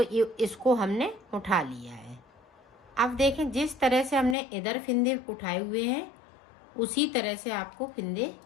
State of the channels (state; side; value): drops out; right; at 4.4 s